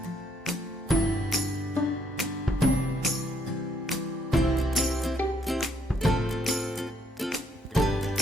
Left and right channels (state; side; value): normal; both; correlation 0.70